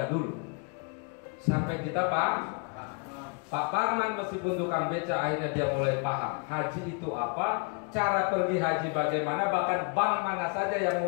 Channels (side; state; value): right; quieter; 36.4 dB